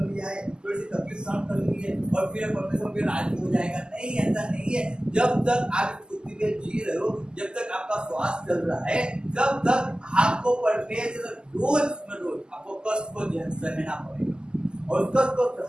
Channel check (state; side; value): late; left; 0.047 ms